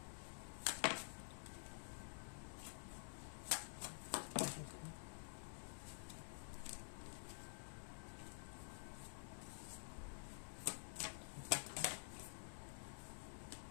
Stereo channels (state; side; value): silent; right; digital silence